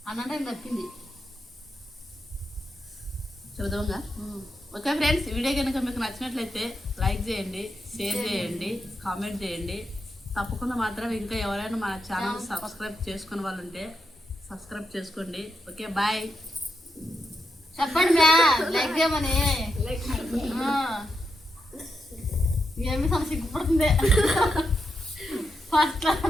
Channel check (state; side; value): normal; both; correlation 0.84